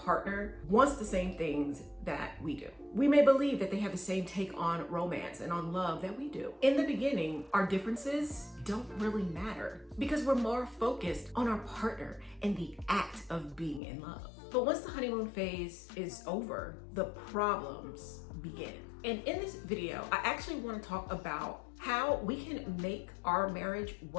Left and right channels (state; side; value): drops out; right; at 13.8 s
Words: wants the same things that we do. We may believe that they have the same take on romance and on love that we do. In the beginning, our differences don't really matter because we're more focused on our partner and the act of being in love. But once the honeymoon phase is over, the problems begin. And in this video, I actually want to talk about how we can make our marriage